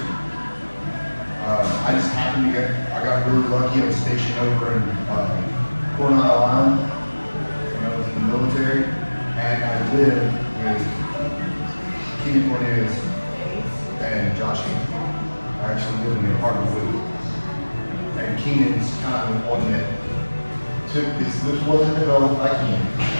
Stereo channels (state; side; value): inverted; both; correlation -1.00